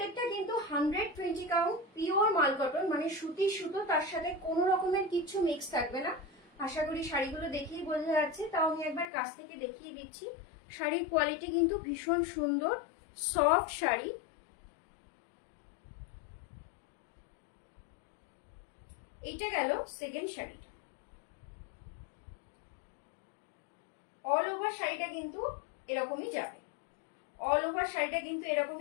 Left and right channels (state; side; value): drops out; right; at 9.1 s